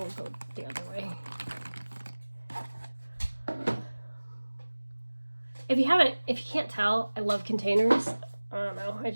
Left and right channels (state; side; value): inverted; both; correlation -1.00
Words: go the other way. If you can't tell, I love containers. I don't know,